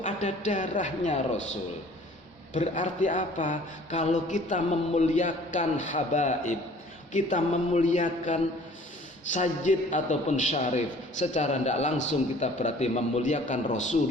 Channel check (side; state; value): both; normal; correlation 0.51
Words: ada darahnya Rasul. Berarti apa? Kalau kita memuliakan habaib, kita memuliakan sayyid ataupun syarif, secara tidak langsung kita berarti memuliakan